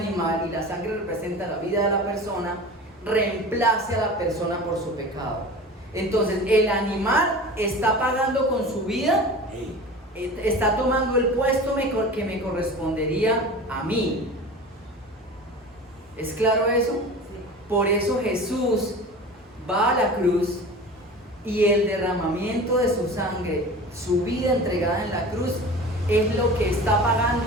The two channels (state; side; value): normal; both; correlation 0.36